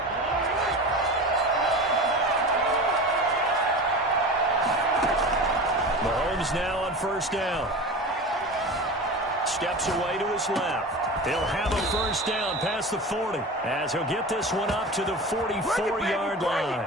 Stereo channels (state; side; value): normal; both; correlation 0.31